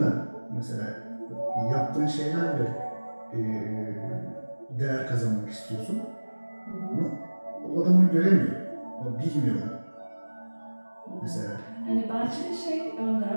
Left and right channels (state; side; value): inverted; both; correlation -1.00